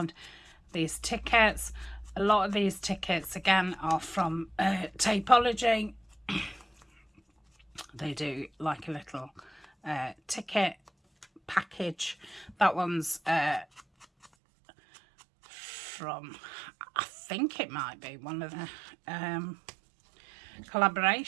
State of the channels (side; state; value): left; drops out; at 14.3 s